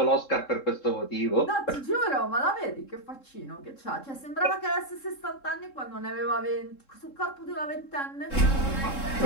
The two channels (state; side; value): late; right; 3.7 ms